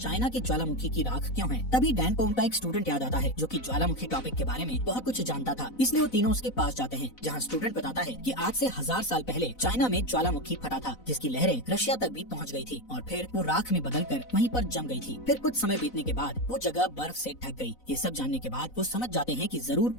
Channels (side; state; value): right; late; 4.0 ms